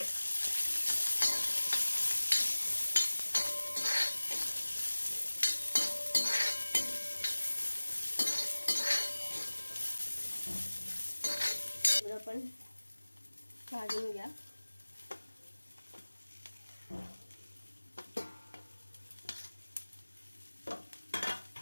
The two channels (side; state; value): both; inverted; correlation -1.00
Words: पण भाजून घ्या।